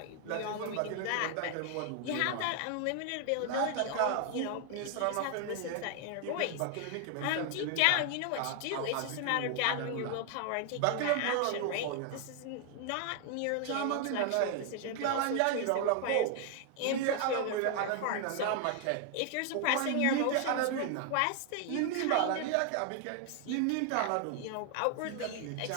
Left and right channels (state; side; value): different; both; correlation 0.00